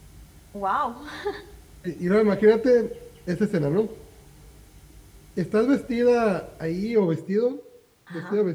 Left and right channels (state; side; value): identical; both; correlation 1.00